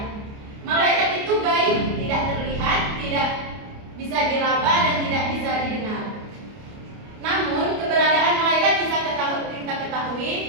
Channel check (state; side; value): late; left; 29 ms